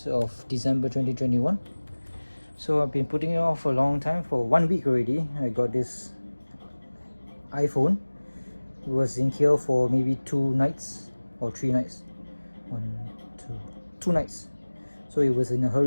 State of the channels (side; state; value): both; inverted; correlation -1.00